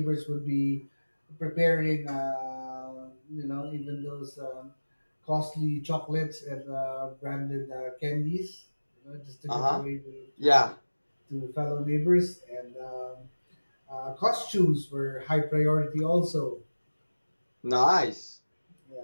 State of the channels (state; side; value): inverted; both; correlation -1.00